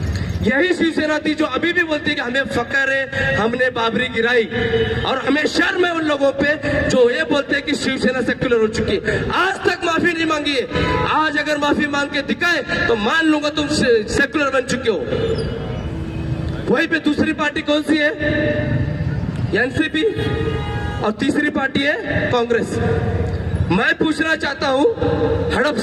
यही शिवसेना थी जो अभी भी बोलती है कि हमें फकर है, हमने बाबरी गिराई, और हमें शर्म है उन लोगों पे जो ये बोलते हैं कि शिवसेना सेक्युलर हो चुकी है। आज तक माफी नहीं मांगी है। आज अगर माफी मांग के दिखाए तो मान लूंगा तुम सेक्युलर बन चुके हो। वहीं पे दूसरी पार्टी कौन सी है? एनसीपी, और तीसरी पार्टी है कांग्रेस। मैं पूछना चाहता हूं,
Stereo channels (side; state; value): both; identical; correlation 1.00